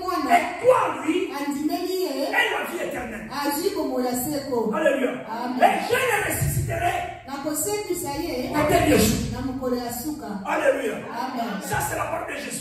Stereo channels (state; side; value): identical; both; correlation 1.00